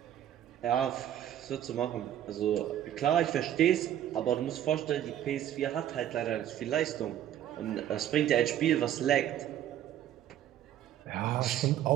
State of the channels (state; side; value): quieter; left; 11.3 dB